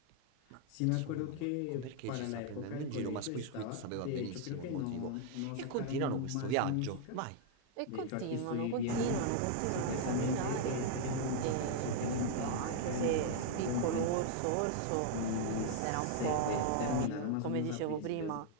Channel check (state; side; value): different; both; correlation 0.00